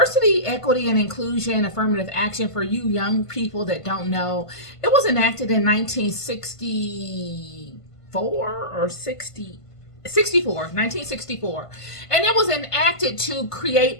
equity, and inclusion, affirmative action, for you young people that don't know, it was enacted in 1964, and it was enacted to create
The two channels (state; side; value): late; right; 1.5 ms